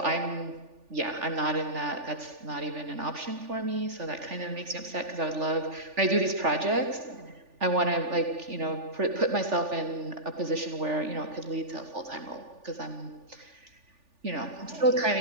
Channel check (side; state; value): left; late; 3.4 ms